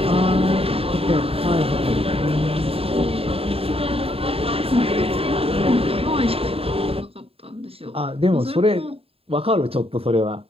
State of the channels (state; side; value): late; left; 0.28 ms